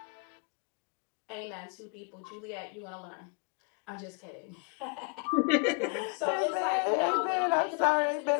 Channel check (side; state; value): right; quieter; 36.9 dB